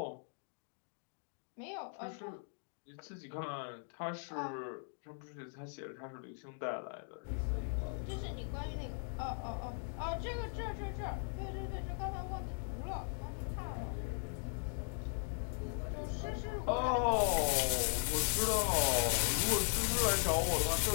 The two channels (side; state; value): right; silent; 52 dB below the other